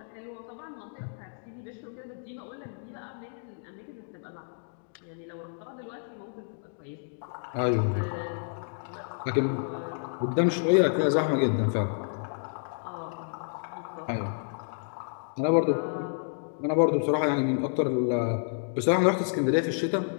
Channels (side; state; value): right; silent; digital silence